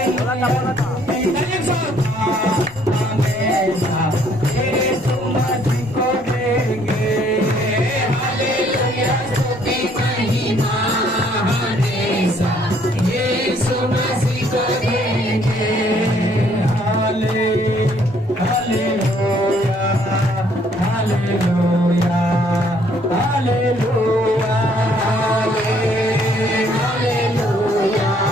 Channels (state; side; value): normal; both; correlation 0.64